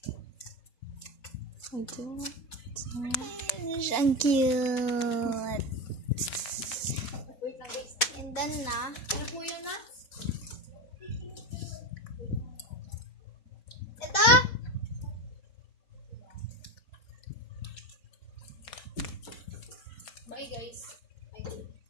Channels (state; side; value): late; right; 4.1 ms